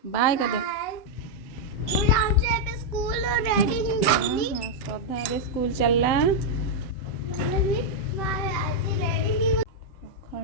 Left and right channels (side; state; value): right; late; 7.4 ms